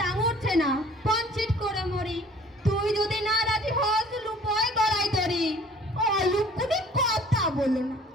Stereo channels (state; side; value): normal; both; correlation 0.52